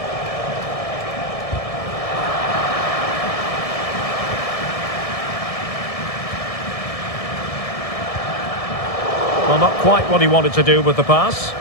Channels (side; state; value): right; late; 1.7 ms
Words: Well, not quite what he wanted to do with the pass.